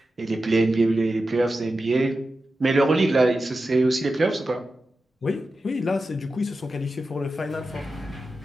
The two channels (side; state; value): both; normal; correlation 0.92